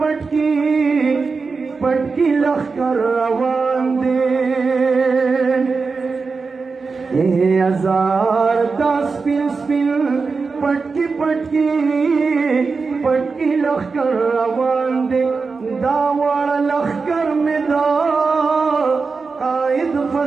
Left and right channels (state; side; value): quieter; left; 4.6 dB